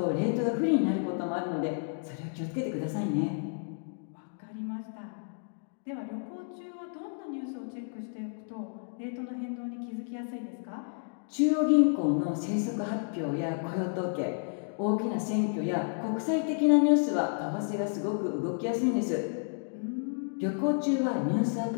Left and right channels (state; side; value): silent; right; digital silence